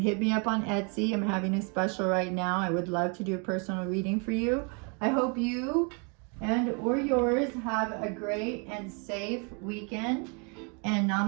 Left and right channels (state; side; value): quieter; left; 35.3 dB